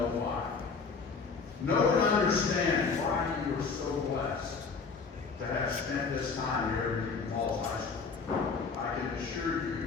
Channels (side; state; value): right; quieter; 4.9 dB